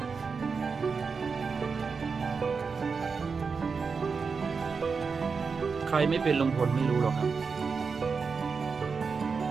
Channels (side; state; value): left; quieter; 5.2 dB